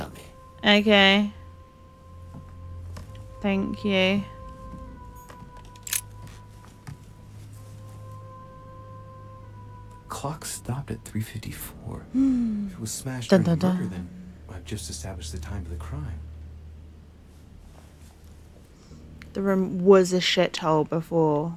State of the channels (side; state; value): both; identical; correlation 1.00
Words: me. Okay. Thank you. Clock stopped at 3:54. Hmm. If it was smashed Dun, during the dun, murder, dun. then I've just established the time of the crime. The room was a shithole before